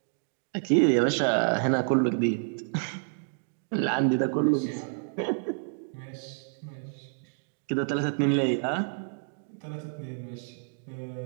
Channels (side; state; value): left; silent; digital silence